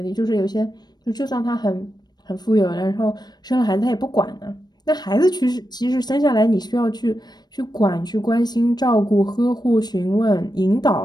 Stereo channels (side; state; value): right; late; 0.20 ms